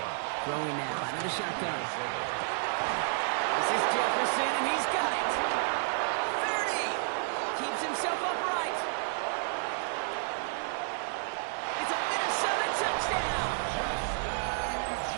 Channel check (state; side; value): silent; left; digital silence